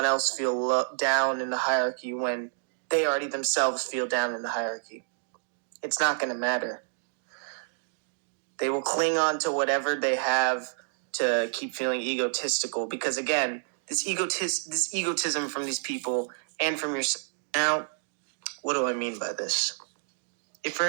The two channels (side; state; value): left; silent; digital silence